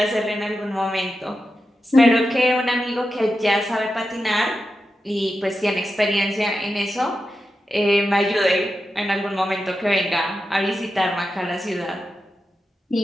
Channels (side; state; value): both; normal; correlation 0.90